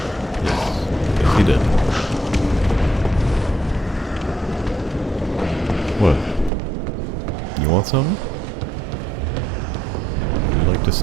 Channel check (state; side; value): drops out; left; at 6.5 s